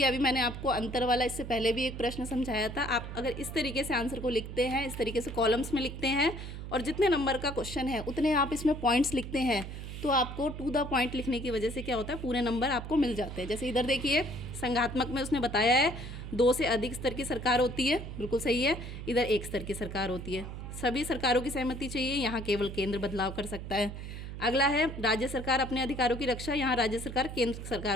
अभी मैंने आपको अंतर वाला इससे पहले भी एक प्रश्न समझाया था। आप अगर इस तरीके से आंसर को लिखते हैं, इस तरीके से कॉलम्स में लिखते हैं और जितने नंबर का क्वेश्चन है उतने आप इसमें पॉइंट्स लिखते हैं, तो आपको टू द पॉइंट लिखने की वजह से क्या होता है, पूरे नंबर आपको मिल जाते हैं। जैसे इधर देखिए संघात्मक में उसने बताया है 2 से अधिक स्तर की सरकार होती है, बिल्कुल सही है। इधर 1 स्तर की सरकार होती है, सभी सरकारों की सहमति चाहिए, यहाँ केवल केंद्र बदलाव कर सकता है। अगला है राज्य सरकार अपने अधिकारों की रक्षा, यहाँ राज्य सरकार केंद्र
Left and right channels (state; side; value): noise; right; hum, 8 dB below the sound